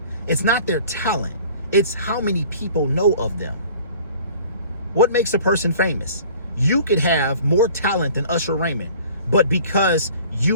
It's not their talent, it's how many people know of them. What makes a person famous? You could have more talent than Usher Raymond, but because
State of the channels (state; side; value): inverted; both; correlation -0.48